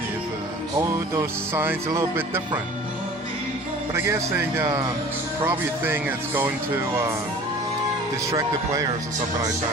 All those signs a little bit different. But I guess they probably think it's going to distract the players or something like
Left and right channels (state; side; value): normal; both; correlation 0.44